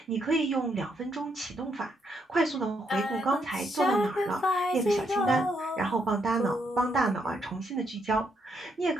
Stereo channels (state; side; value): normal; both; correlation 0.76